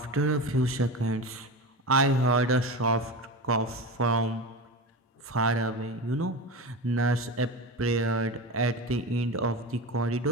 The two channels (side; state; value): both; normal; correlation 0.25